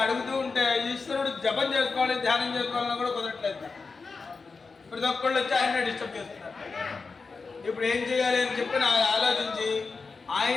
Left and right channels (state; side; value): quieter; right; 4.5 dB